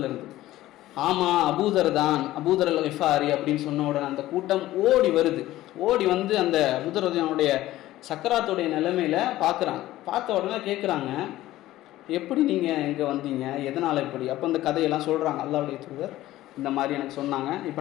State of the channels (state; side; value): quieter; right; 15.5 dB